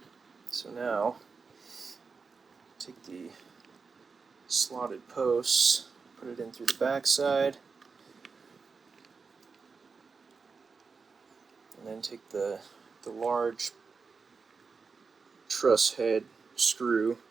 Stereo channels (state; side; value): quieter; left; 4.9 dB